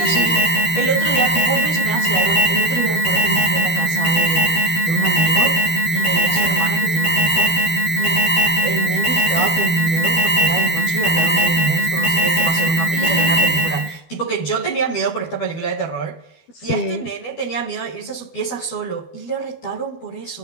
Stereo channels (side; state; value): right; late; 12 ms